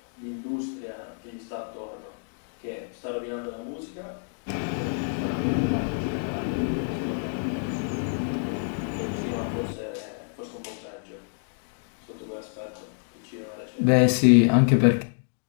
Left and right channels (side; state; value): right; silent; digital silence